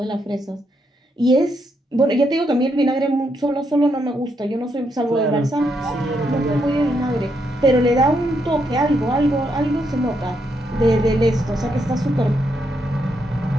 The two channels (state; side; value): normal; both; correlation 0.78